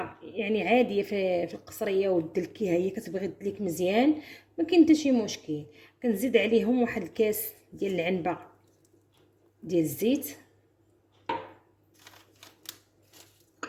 يعني عاديه في القصريه ودلكيها هي كتبغي تدليك مزيان ما كاين حتى شي مشكل. كنزيد عليهم واحد الكاس ديال العنبه ديال الزيت،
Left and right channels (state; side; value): identical; both; correlation 1.00